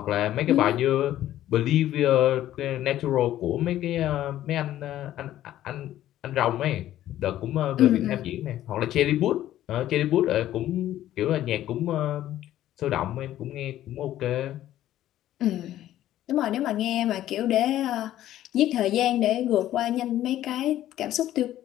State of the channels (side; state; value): right; quieter; 13.1 dB